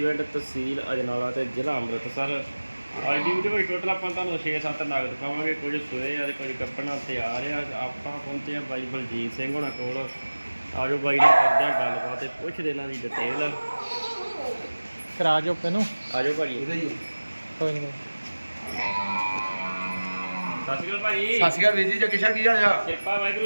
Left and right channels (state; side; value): inverted; both; correlation -1.00